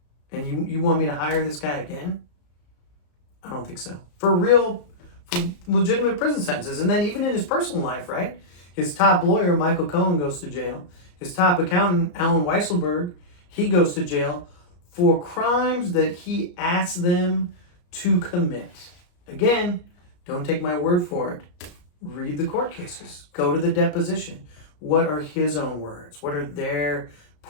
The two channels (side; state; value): right; late; 34 ms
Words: And you want me to hire this guy again? I don't think so. For legitimate prison sentences. And then even in his personal life, right? His top lawyer, Michael Cohen, goes to jail. His top accountant, Alan Weisselberg, he goes to jail for crimes that he asked them to commit. Again, don't take my word for it. Read the court cases. Go to the deposition. What are his own words? What are their